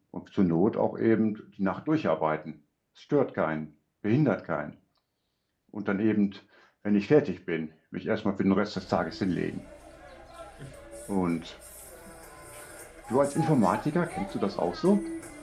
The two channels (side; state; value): both; identical; correlation 1.00